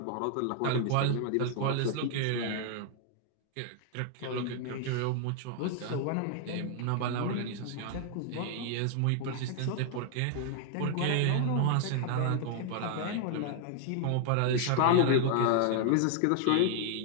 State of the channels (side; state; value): both; different; correlation 0.00